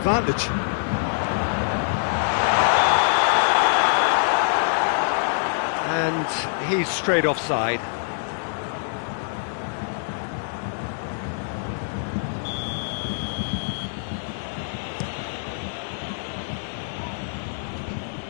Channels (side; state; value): right; silent; digital silence